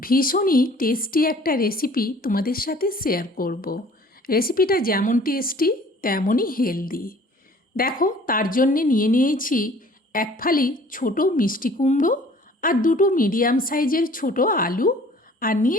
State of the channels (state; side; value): normal; both; correlation 0.52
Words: ভীষণই টেস্টি একটা রেসিপি তোমাদের সাথে শেয়ার করব। রেসিপিটা যেমন টেস্টি তেমনই হেলদি। দেখো, তার জন্যে নিয়ে নিয়েছি এক ফালি ছোটো মিষ্টি কুমড়ো আর দুটো মিডিয়াম সাইজের ছোটো আলু, আর